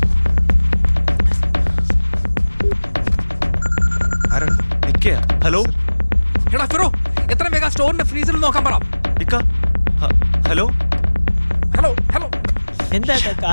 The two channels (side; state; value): both; inverted; correlation -1.00